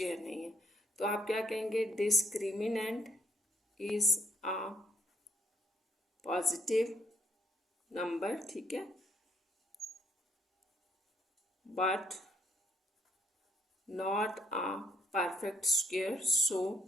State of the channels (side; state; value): both; normal; correlation 0.71